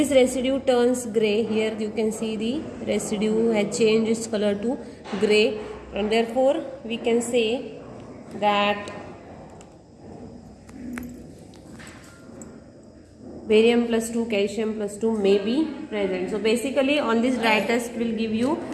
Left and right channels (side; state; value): both; identical; correlation 1.00